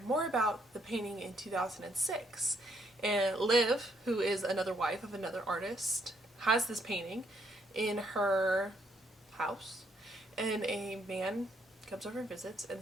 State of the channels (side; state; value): both; normal; correlation 0.71